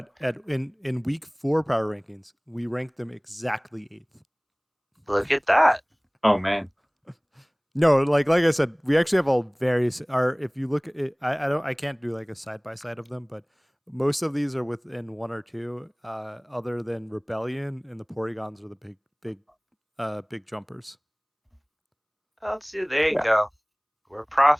in week 4 power rankings, we ranked them exactly 8th. Look at that. Oh man. No, like I said, we actually have all various. Our if you look at it, I can't do like a side by side of them, but most of these are within 1 or 2. Other than Rebellion and the Porygons are the big jumpers. Let's see. There you Yeah. go. We're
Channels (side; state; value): both; identical; correlation 1.00